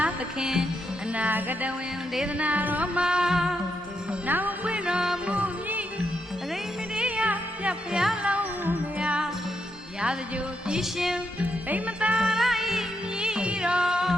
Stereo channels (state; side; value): normal; both; correlation 0.80